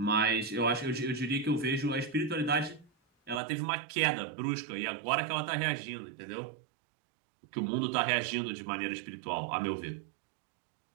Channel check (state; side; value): drops out; left; at 3.4 s